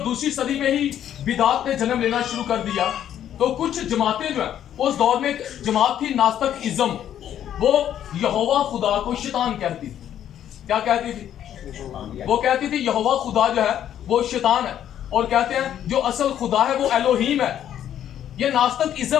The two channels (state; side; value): quieter; right; 10.5 dB